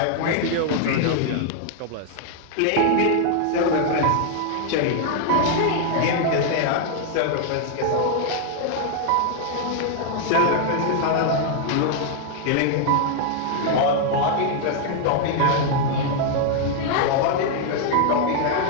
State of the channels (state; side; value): different; both; correlation 0.00